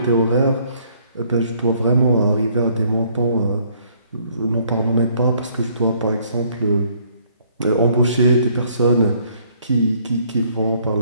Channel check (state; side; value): inverted; both; correlation -0.64